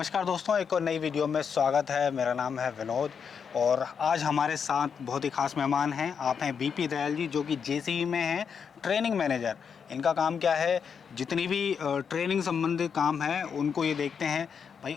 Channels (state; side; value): quieter; right; 6.7 dB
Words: दोस्तों, एक और नई वीडियो में स्वागत है। मेरा नाम है विनोद और आज हमारे साथ बहुत ही खास मेहमान हैं। आप हैं बीपी दयाल जी, जो कि जेसीबी में हैं ट्रेनिंग मैनेजर। इनका काम क्या है, जितनी भी ट्रेनिंग संबंधित काम है उनको ये देखते हैं भाई